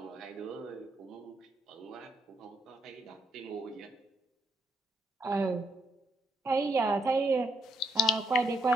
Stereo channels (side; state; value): both; normal; correlation 0.73